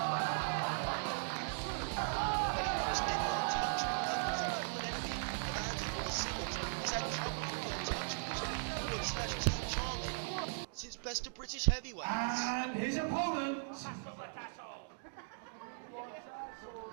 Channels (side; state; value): left; silent; digital silence